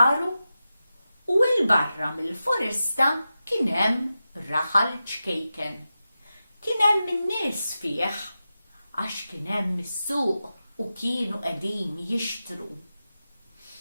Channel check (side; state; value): both; inverted; correlation -0.92